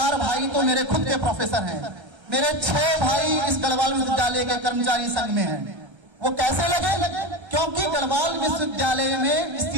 भाई तो मेरे खुद के प्रोफेसर हैं, मेरे 6 भाई इस गढ़वाल विश्वविद्यालय के कर्मचारी संघ में हैं। वो कैसे लगे? क्योंकि गढ़वाल विश्वविद्यालय में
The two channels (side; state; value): left; late; 1.3 ms